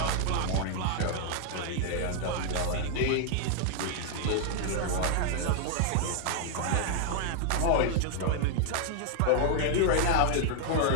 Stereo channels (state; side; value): different; both; correlation 0.00